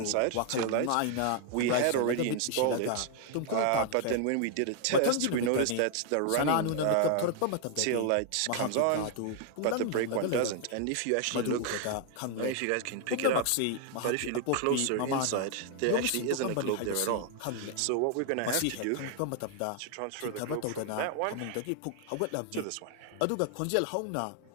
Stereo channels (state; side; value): different; both; correlation 0.00